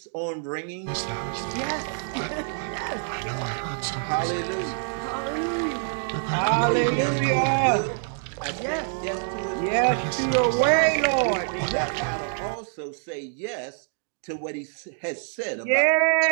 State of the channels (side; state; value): left; silent; digital silence